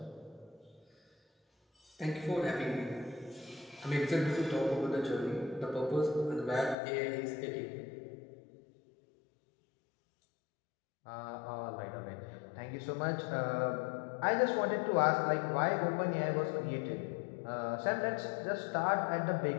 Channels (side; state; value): right; drops out; at 6.8 s